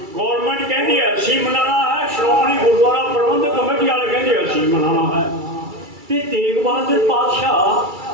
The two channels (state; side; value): late; left; 2.3 ms